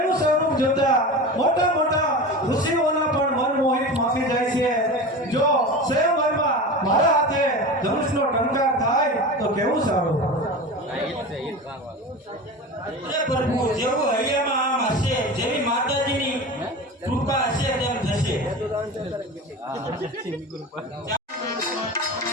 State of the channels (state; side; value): normal; both; correlation 0.30